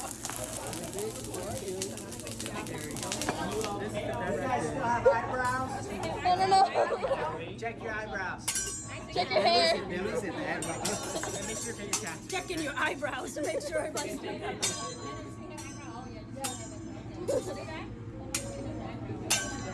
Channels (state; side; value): identical; both; correlation 1.00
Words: no Check your eyebrows. check your hair Listen, make sure your cat. Checking your eyebrows to make sure everybody's